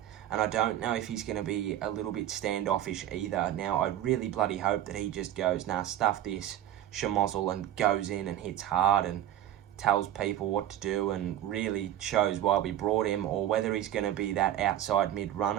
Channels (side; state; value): left; quieter; 12.0 dB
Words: and I don't know if he's going to be a little bit standoffish either. Now, I really bloody hope that he just goes, nah, stuff this, schmozzle, and goes in and hits hard and tells people what to do and really shows why we brought him, or whether he's going to be that outside mid